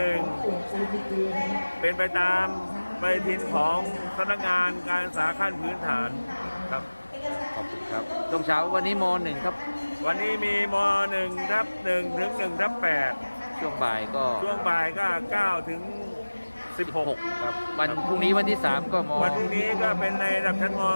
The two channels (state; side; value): inverted; both; correlation -1.00